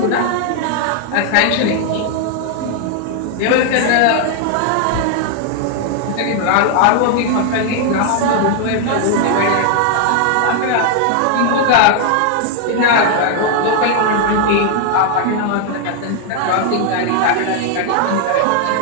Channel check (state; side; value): different; both; correlation 0.00